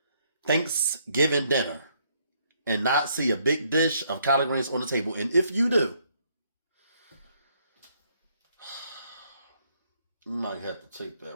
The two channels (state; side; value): inverted; both; correlation -0.70